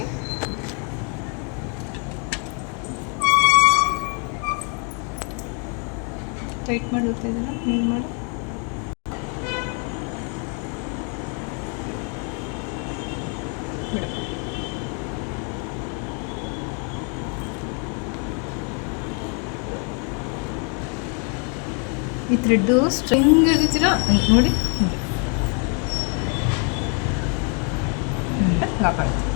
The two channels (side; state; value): right; quieter; 38.6 dB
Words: ಟೈಟ್ ಮಾಡಿ ಹೋಗ್ತಾ ಇದ್ದೀರಾ ಕ್ಲೀನ್ ಮಾಡಿ ಬಿಡು. ಈ ಥ್ರೆಡ್ಡು ಸ್ಟ್ರಿಂಗ್ ಹಿಡಿತೀರಾ ನೋಡಿ ಲಾಕ್ ಆಗುತ್ತೆ.